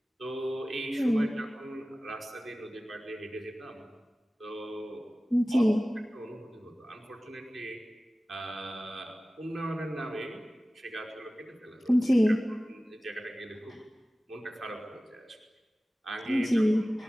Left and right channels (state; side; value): normal; both; correlation 0.97